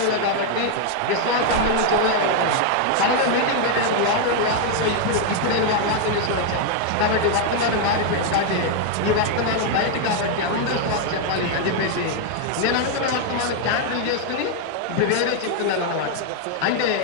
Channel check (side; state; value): both; different; correlation 0.00